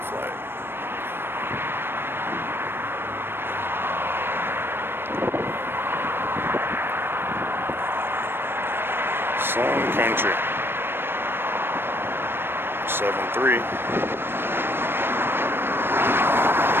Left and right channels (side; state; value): left; late; 0.10 ms